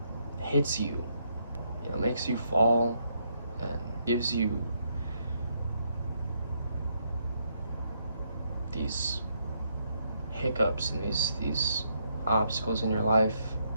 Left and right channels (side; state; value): both; inverted; correlation -0.76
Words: hits you, makes you fall and gives you these hiccups and these obstacles in your life.